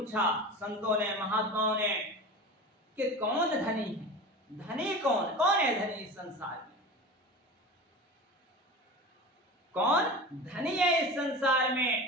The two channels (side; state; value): both; normal; correlation 0.31